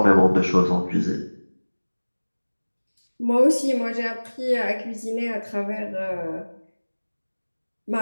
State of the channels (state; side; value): inverted; both; correlation -1.00